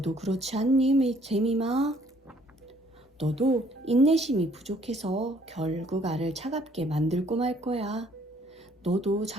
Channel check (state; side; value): normal; both; correlation 0.62